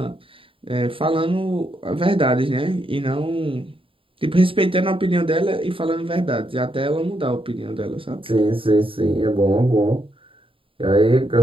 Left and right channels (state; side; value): late; left; 0.26 ms